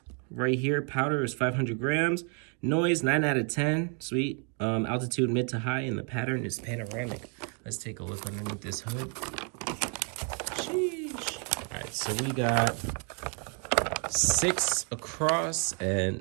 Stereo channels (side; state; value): left; quieter; 38.3 dB